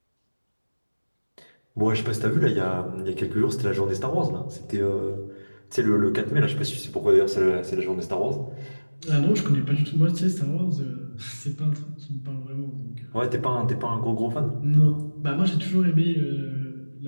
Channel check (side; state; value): both; inverted; correlation -1.00